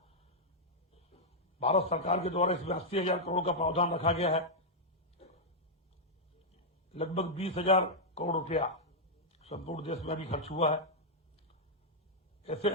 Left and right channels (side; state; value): both; normal; correlation -0.05